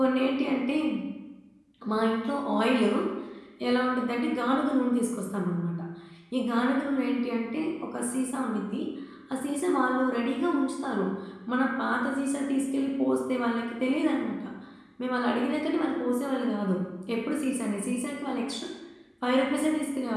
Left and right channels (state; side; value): identical; both; correlation 1.00